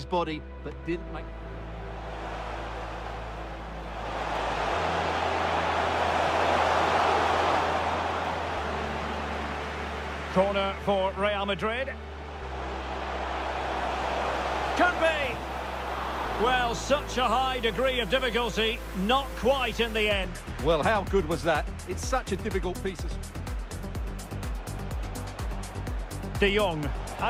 body, but didn't make... Corner for Real Madrid. Could be. Well, such a high degree of difficulty, not quite in the end. Well, how good was that? It's such a difficult piece of... De Jong,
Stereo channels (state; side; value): identical; both; correlation 1.00